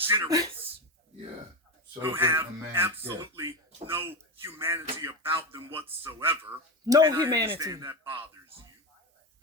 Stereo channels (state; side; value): normal; both; correlation 0.17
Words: Yeah. So who have a man's absolutely no humanity about them whatsoever. No And I humanity. understand that bothers